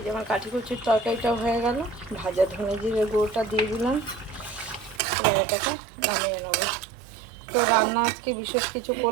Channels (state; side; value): drops out; left; at 5.0 s